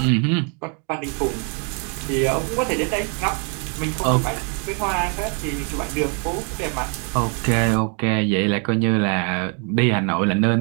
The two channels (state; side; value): quieter; left; 38.1 dB